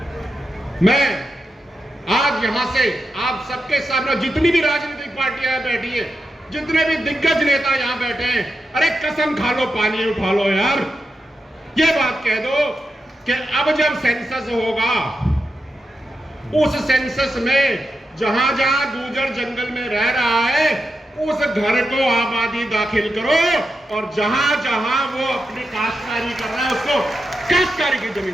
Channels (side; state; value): both; normal; correlation 0.88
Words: मैं आज यहां से आप सबके सामने, जितनी भी राजनीतिक पार्टियां बैठी है, जितने भी दिग्गज नेता यहां बैठे हैं, अरे कसम खा लो, पानी उठा लो यार। ये बात कह दो कि अब जब सेंसस होगा, उस सेंसस में जहां जहां गुर्जर जंगल में रह रहा है, उस घर को आबादी दाखिल करो, और जहां जहां वो अपनी काश्तकारी कर रहा है उसको काश्तकारी की